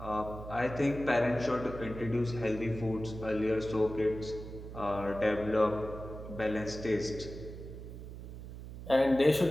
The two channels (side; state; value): right; noise; hum, 11 dB below the sound